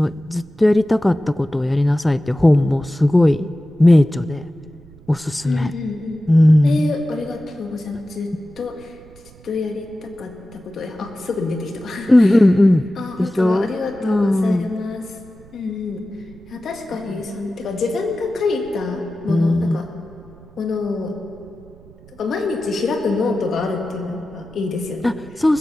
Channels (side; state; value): right; noise; rumble, 24 dB below the sound